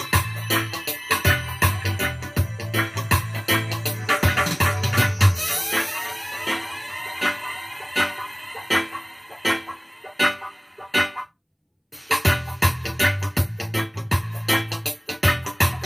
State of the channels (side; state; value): both; identical; correlation 1.00